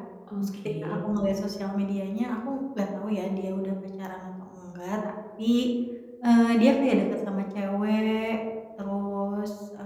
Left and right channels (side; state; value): both; identical; correlation 1.00